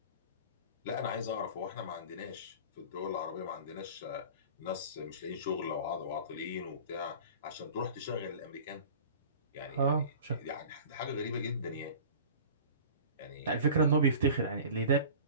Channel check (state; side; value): inverted; both; correlation -0.40